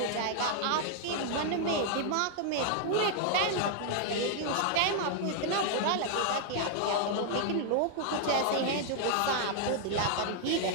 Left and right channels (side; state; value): both; different; correlation 0.00